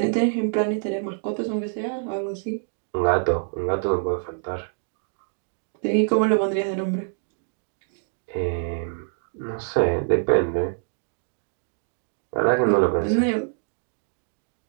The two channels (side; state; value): left; silent; 61 dB below the other